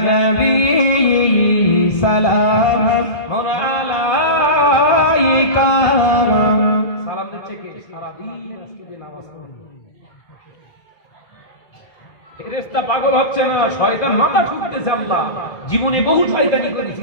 নবী সালাম আলাইকা, সালাম দিচ্ছে কে? সারাদিন আজকে যে নামাজ পড়ে ফেরেশতা পাগল হচ্ছে না, শয়তান মাথা ঠুকতেছে। আল্লাহ জীবনে বহু শয়তানি করেছি,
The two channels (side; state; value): right; late; 1.5 ms